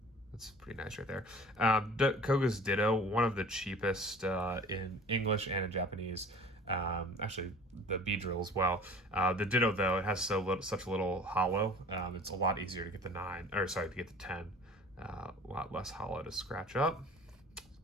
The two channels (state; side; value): normal; both; correlation 0.45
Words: That's pretty nice right there. Koga's Ditto, one of the cheapest in English and in Japanese. Actually, the Beedrill as well. The Ditto, though, it has such a little hollow. It's a lot easier to get the 9, or sorry, to get the 10. A lot less hollow to scratch up.